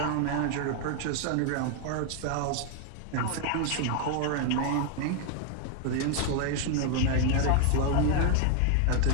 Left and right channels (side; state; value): both; different; correlation 0.00